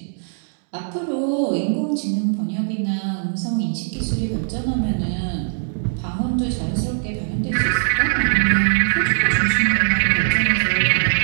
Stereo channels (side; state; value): left; silent; digital silence